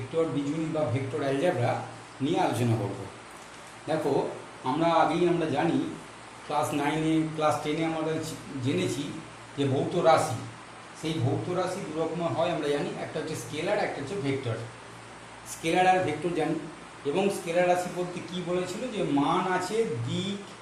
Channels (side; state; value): both; identical; correlation 1.00